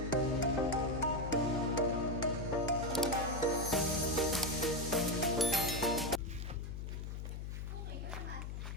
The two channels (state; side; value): noise; left; hum, 6 dB below the sound